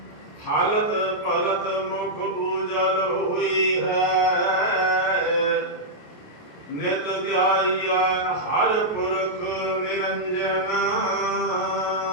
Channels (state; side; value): late; right; 28 ms